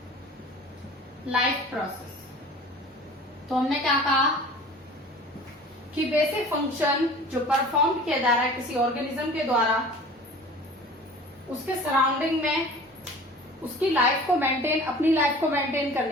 life process. तो हमने क्या कहा कि बेसिक फंक्शन जो परफॉर्म किया जा रहा है किसी ऑर्गेनिज्म के द्वारा उसके सराउंडिंग में उसकी लाइफ को मेंटेन, अपनी लाइफ को मेंटेन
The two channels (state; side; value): normal; both; correlation 0.43